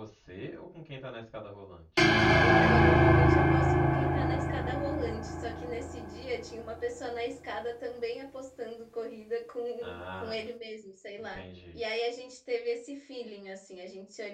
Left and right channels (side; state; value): both; identical; correlation 1.00